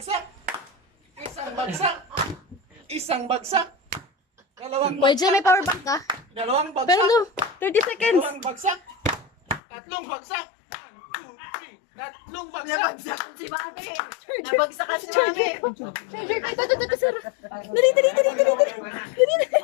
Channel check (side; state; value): right; drops out; at 9.6 s